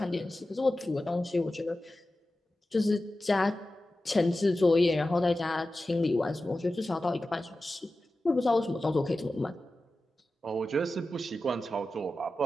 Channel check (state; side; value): normal; both; correlation 0.94